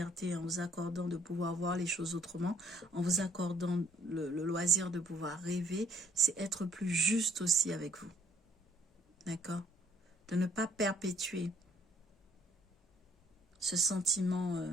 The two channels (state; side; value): normal; both; correlation 0.62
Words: en vous accordant de pouvoir voir les choses autrement, en vous accordant le loisir de pouvoir rêver, c'est être plus juste aussi avec vous. D'accord? De ne pas perpétuer ce sentiment